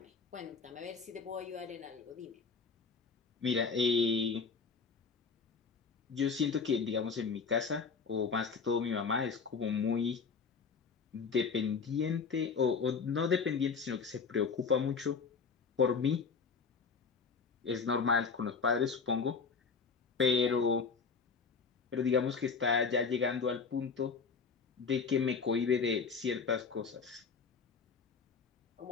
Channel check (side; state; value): right; quieter; 5.3 dB